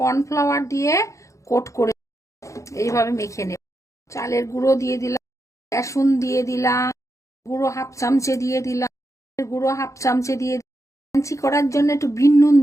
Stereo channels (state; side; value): late; right; 0.15 ms